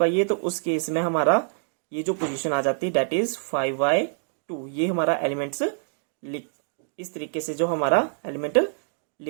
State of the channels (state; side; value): silent; left; digital silence